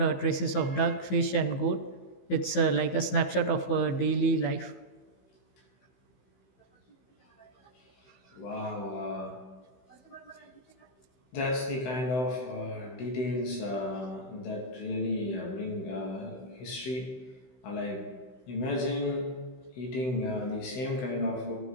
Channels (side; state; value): right; late; 16 ms